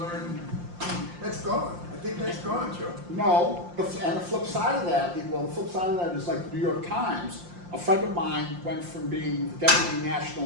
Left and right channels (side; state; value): left; late; 5.7 ms